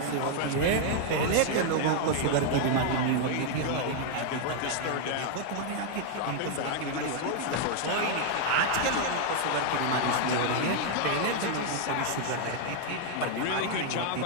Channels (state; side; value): different; both; correlation 0.00